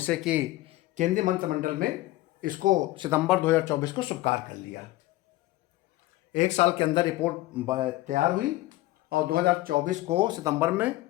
कि केंद्रीय मंत्रिमंडल में इसको सितंबर 2024 को स्वीकार कर लिया। 1 साल के अंदर रिपोर्ट तैयार हुई और 2024 को सितंबर में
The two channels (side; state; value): right; quieter; 17.6 dB